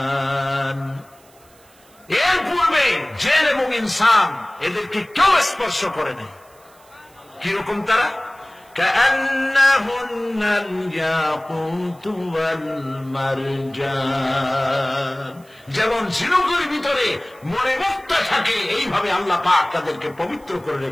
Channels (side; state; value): right; noise; hiss, 29 dB below the sound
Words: এর পূর্বে জিন এবং ইনসান এদেরকে কেউ স্পর্শ করে নাই। কিরকম তারা? কাআন্নাহুন্নাল ইয়াকুতু ওয়াল মারজান। যেমন ঝিনুকের ভিতরে মণিমুক্তা থাকে, এইভাবে আল্লাহ পাক তাদেরকে পবিত্র করে